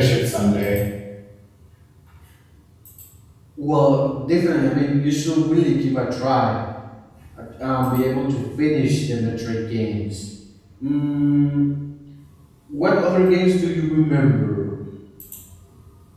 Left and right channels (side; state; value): both; identical; correlation 1.00